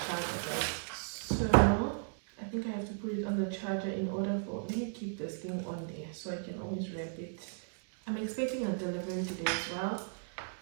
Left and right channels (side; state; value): left; silent; digital silence